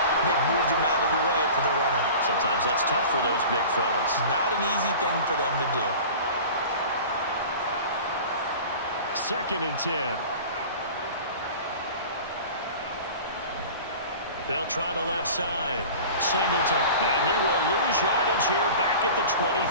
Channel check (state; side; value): inverted; both; correlation -0.39